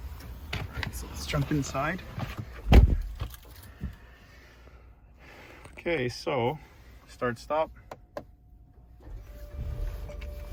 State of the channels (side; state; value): both; identical; correlation 1.00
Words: so let's jump inside. Okay, so start, stop.